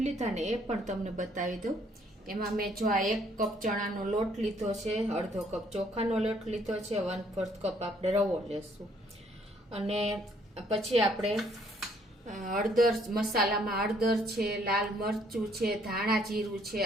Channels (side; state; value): both; normal; correlation 0.65